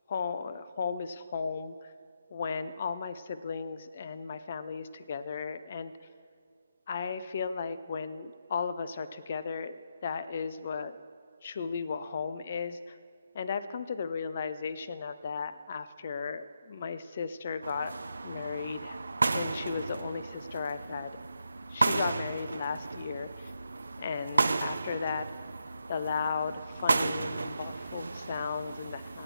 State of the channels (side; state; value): both; inverted; correlation -0.83